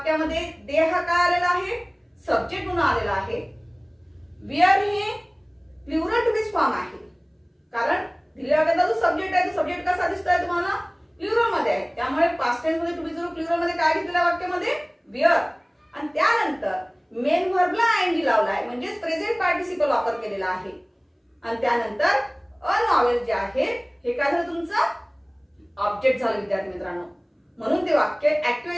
दे हा काय आलेला आहे, सब्जेक्ट म्हणून आलेला आहे. वेअर हे प्लुरल टू बी फॉर्म आहे, कारण दिलेल्या वाक्याचा जो सब्जेक्ट आहे तो सब्जेक्ट कसा दिसतोय तुम्हाला, प्लुरल मध्ये आहे. त्यामुळे पास्ट टेन्स मध्ये टू बी जरूर प्लुरल मध्ये काय घेतलेल्या वाक्यामध्ये, वेअर. आणि त्यानंतर मेन व्हर्बला आयएनजी लावलाय, म्हणजेच प्रेझेंट पार्टिसिपल वापर केलेला आहे. आणि त्यानंतर अ नॉवेल जे आहे हे काय झालं, तुमचं ऑब्जेक्ट झालं विद्यार्थी मित्रांनो. म्हणून ते वाक्य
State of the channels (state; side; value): identical; both; correlation 1.00